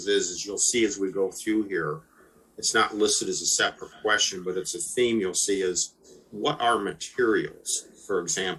is you'll see as we go through here, it's not listed as a separate question, but it's a theme you'll see is what are materials? For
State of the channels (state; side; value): identical; both; correlation 1.00